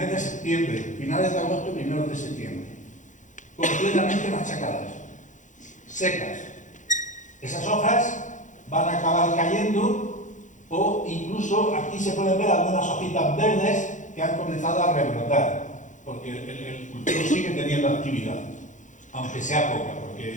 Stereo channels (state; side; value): late; right; 0.36 ms